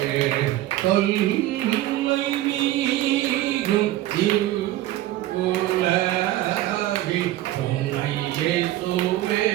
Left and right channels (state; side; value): quieter; left; 15.0 dB